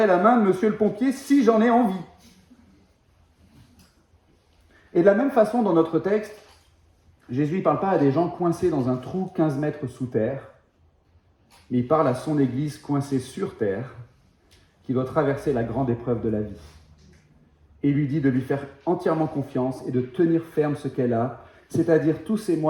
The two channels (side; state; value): both; identical; correlation 1.00